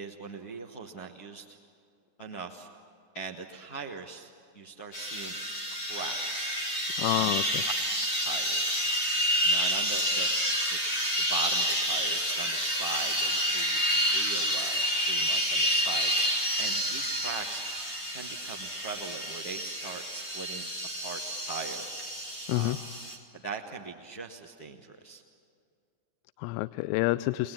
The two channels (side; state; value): right; late; 9.7 ms